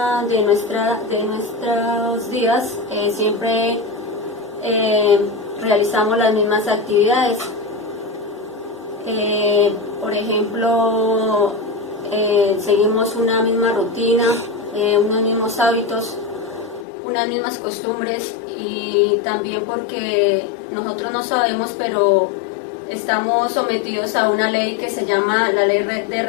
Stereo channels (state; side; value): drops out; right; at 16.9 s